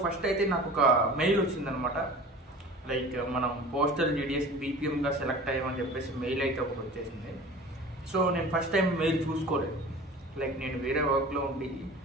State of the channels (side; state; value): both; normal; correlation 0.40